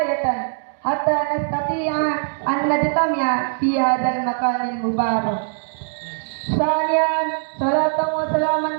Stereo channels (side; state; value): left; silent; digital silence